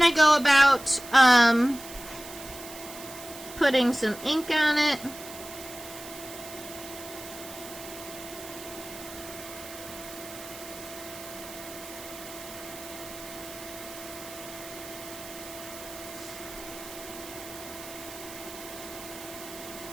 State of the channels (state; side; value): noise; right; hiss, 13 dB below the sound